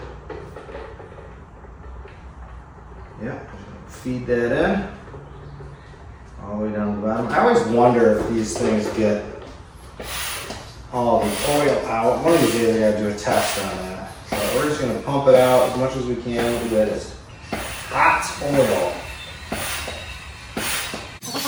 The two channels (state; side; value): identical; both; correlation 1.00